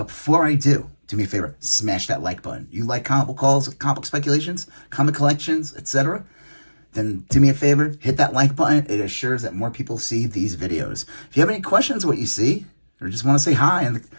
before I do me a favor, smash that like button. You like comic calls, comic speculations, comic collections, etc.? Then do me a favor, hit that like button. It assures that more people see these videos. If you have any questions of what you see, or just want to say hi, and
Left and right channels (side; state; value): both; inverted; correlation -1.00